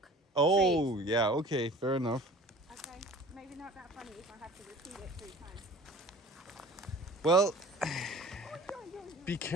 Oh, trees. yeah, okay, fair enough. Okay. Maybe not that funny if I have to repeat it 3 times. Well, be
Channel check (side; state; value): both; normal; correlation 0.44